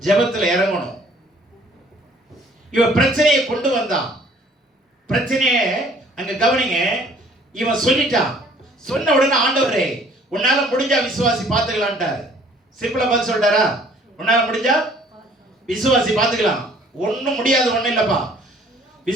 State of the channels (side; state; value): both; normal; correlation 0.57